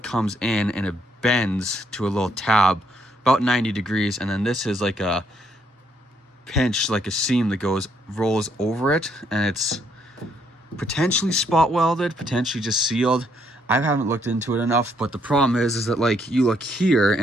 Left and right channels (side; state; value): both; normal; correlation 0.72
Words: in and it bends to a little tab about 90 degrees, and then this is like a pinch, like a seam that rolls over it, and it's potentially spot welded, potentially just sealed. I haven't looked into it enough, but the problem is that, like, you look here